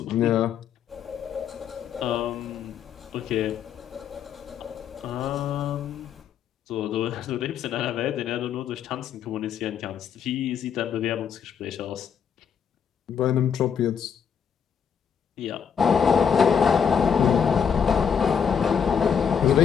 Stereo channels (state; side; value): quieter; right; 7.5 dB